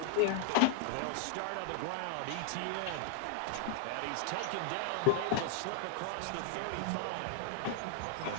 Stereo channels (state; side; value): different; both; correlation 0.00